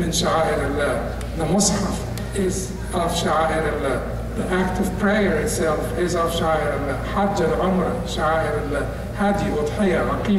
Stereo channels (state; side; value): identical; both; correlation 1.00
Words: sha'air Allah, the mushaf is of sha'air Allah, the act of prayer itself is of sha'air Allah, hajj and umrah, sha'air Allah, hadi, udhiyah,